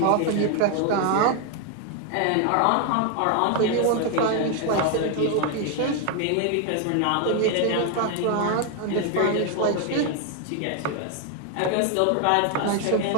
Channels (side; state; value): both; different; correlation 0.00